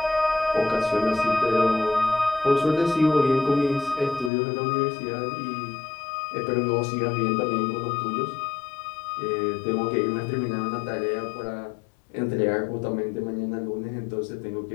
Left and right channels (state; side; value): drops out; right; at 4.3 s